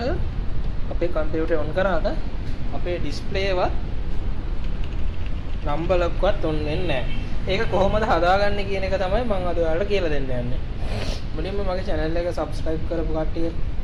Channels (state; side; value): identical; both; correlation 1.00